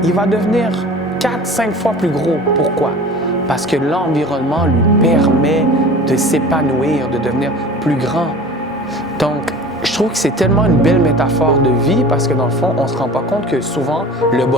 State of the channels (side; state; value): both; normal; correlation 0.40